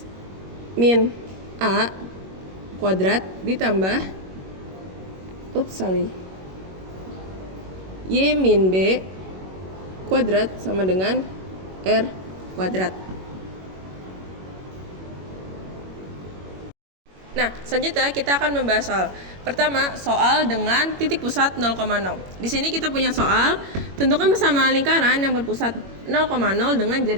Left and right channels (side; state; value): left; late; 21 ms